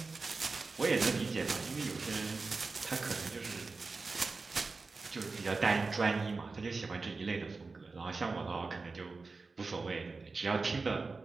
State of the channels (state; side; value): quieter; left; 4.0 dB